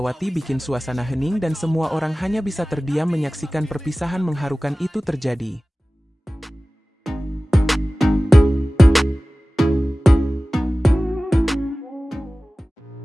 bikin suasana hening dan semua orang hanya bisa terdiam menyaksikan perpisahan mengharukan itu terjadi.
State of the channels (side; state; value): both; normal; correlation 0.97